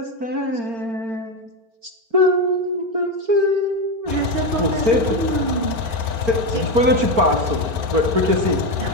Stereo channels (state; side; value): late; left; 4.4 ms